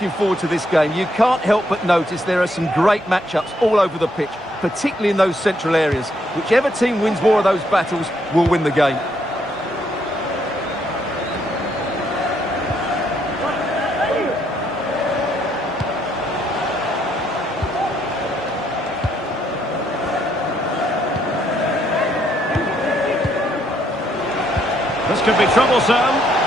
forward to this game, you can't help but notice there are some great matchups all over the pitch, particularly in those central areas. Whichever team wins more of those battles will win the game. This could be troublesome.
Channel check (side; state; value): both; normal; correlation 0.73